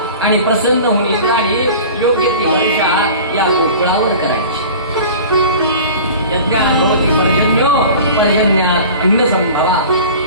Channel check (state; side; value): inverted; both; correlation -0.39